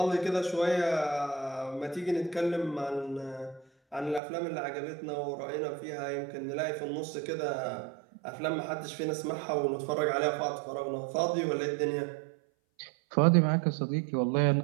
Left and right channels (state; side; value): drops out; left; at 4.2 s